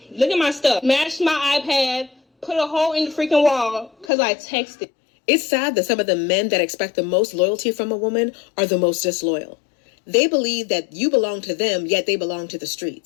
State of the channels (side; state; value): right; drops out; at 4.1 s